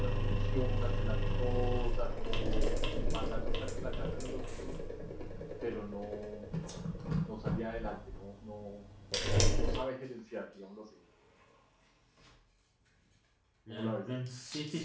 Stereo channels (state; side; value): identical; both; correlation 1.00